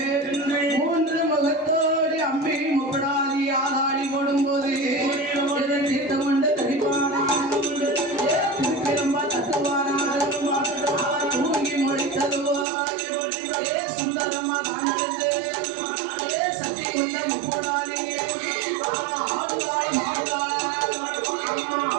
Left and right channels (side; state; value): left; drops out; at 12.7 s